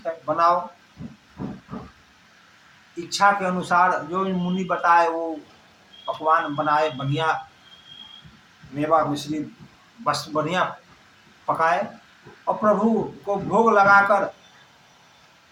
है बनाओ। इच्छा के अनुसार जो मुनि बताए वो पकवान बनाए, बढ़िया मेवा मिश्री बस बढ़िया पकाए और प्रभु को भोग लगाकर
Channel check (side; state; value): both; identical; correlation 1.00